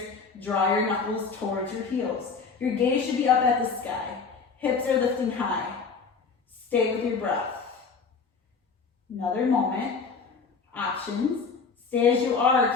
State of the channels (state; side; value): quieter; right; 5.1 dB